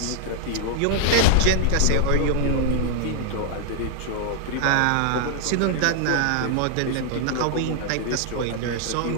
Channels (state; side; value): different; both; correlation 0.00